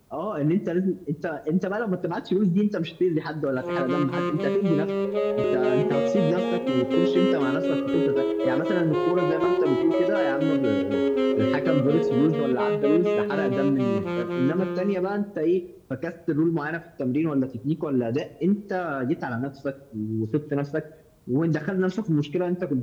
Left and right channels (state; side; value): identical; both; correlation 1.00